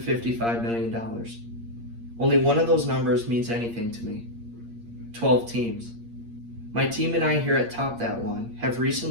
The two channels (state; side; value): late; left; 8.6 ms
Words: million. Only one of those numbers means anything to me. 12 teams. My team and I here at Top That One have